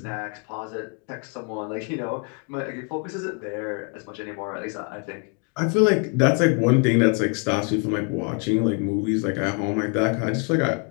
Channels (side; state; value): right; quieter; 35.8 dB